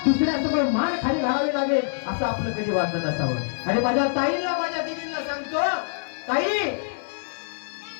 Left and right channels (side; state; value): right; silent; digital silence